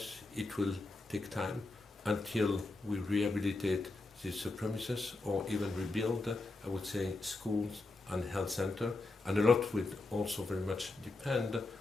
it will take time until we rehabilitate these premises or even rebuild, I would say, schools and health center. And a lot will also very much depend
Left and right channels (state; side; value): quieter; right; 3.2 dB